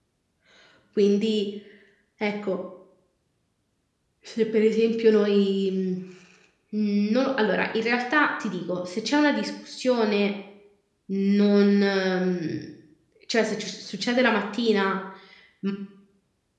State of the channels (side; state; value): both; identical; correlation 1.00